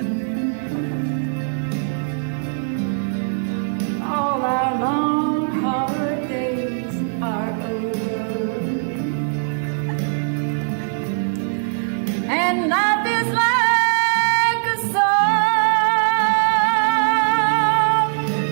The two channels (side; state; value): left; silent; 63 dB below the other